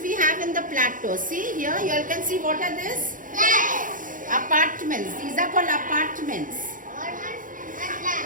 we have in the plateau? See here, you all can see what are this? Apartments. These are called apartments.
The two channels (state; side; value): late; left; 0.39 ms